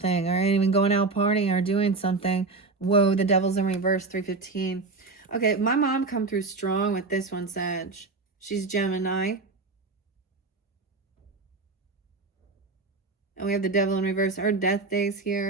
or even going out partying or doing something. Whoa, the devil's in reverse, 315. Okay, my mom come through strong with this one, Sag. She's Gemini. And we have the devil in reverse. Our death days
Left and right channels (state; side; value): quieter; left; 3.8 dB